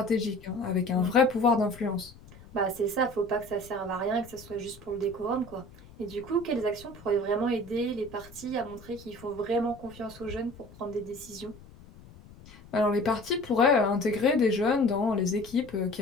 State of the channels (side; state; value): left; noise; rumble, 21 dB below the sound